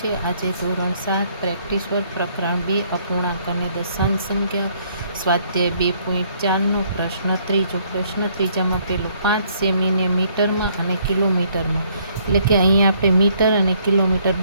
આજે ધોરણ 7 પ્રેક્ટિસ વર્ક પ્રકરણ 2 અપૂર્ણાંક અને દશાંશ સંખ્યા સ્વાધ્યાય 2.4નો પ્રશ્ન ત્રીજો। પ્રશ્ન ત્રીજામાં પેલું 5 સેમીને મીટરમાં અને કિલોમીટરમાં, એટલે કે અહીંયા આપણે મીટર અને કિલોમીટર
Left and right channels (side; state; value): both; inverted; correlation -0.65